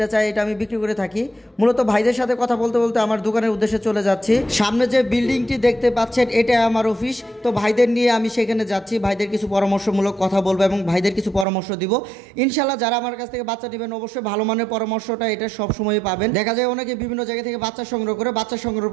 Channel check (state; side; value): drops out; left; at 11.5 s